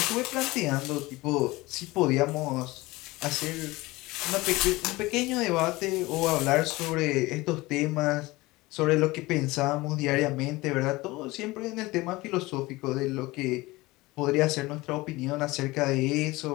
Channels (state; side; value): quieter; right; 20.7 dB